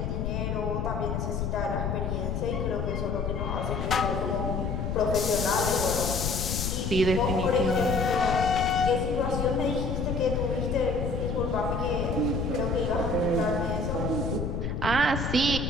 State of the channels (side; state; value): left; noise; rumble, 1 dB below the sound